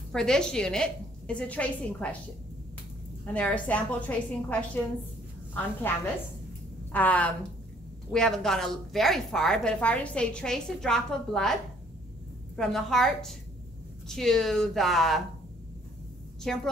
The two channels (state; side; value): normal; both; correlation 0.62